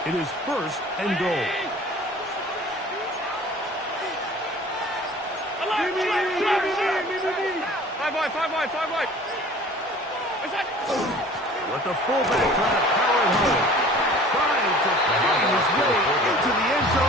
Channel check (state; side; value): normal; both; correlation 0.46